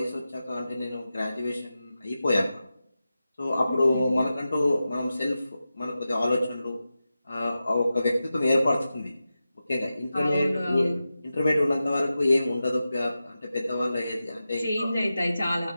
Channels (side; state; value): both; inverted; correlation -0.92